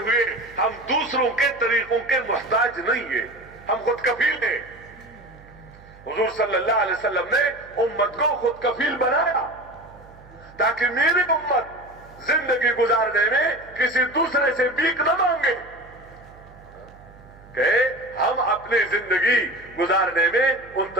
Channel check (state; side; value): noise; right; hum, 23 dB below the sound